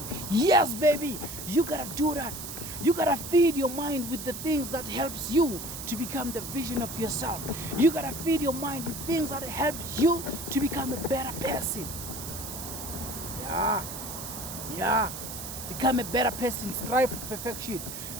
Yes, baby, you gotta do that. You gotta feed your mind with the things that helps you to become the vision of yourself. You gotta feed your mind with things that helps you to become a better person. Yeah. Become a better person. Strive for perfection.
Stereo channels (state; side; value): noise; right; hiss, 8 dB below the sound